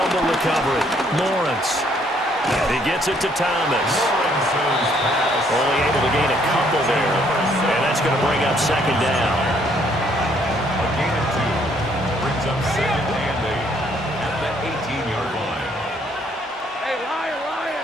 recovery, Lawrence. And he gets it to Thomas. Only able to gain a couple there. And that's going to bring up 2nd down. A gain of 2 brings up 2nd and 8 at the 18-yard line. Hey, Lion.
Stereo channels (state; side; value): normal; both; correlation 0.66